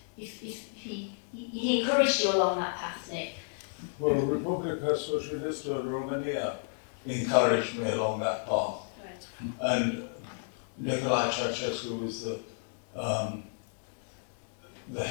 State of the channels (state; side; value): silent; right; 56 dB below the other